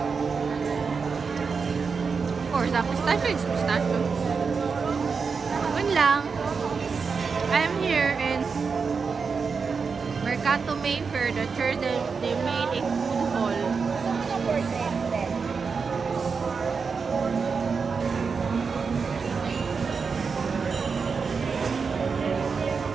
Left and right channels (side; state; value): left; quieter; 5.3 dB